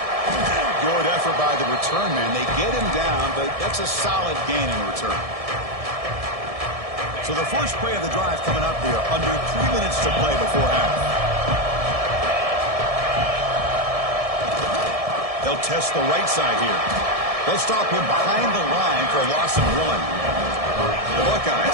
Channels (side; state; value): left; late; 1.7 ms